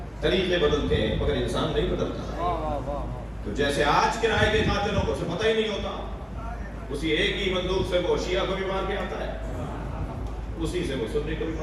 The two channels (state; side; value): identical; both; correlation 1.00